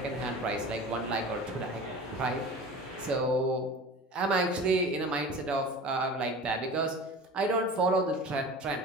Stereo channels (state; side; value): normal; both; correlation 0.37